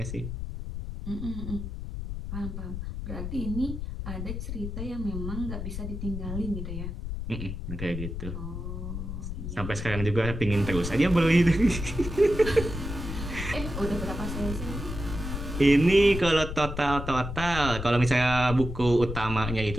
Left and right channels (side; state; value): left; noise; rumble, 6 dB below the sound